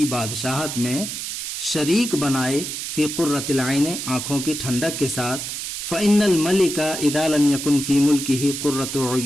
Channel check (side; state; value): right; noise; hiss, 5 dB below the sound